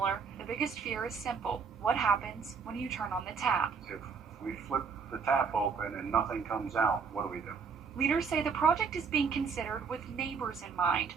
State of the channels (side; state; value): left; quieter; 5.7 dB